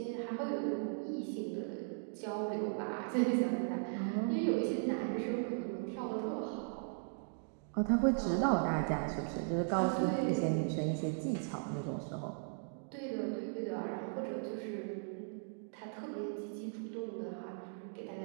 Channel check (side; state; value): left; silent; digital silence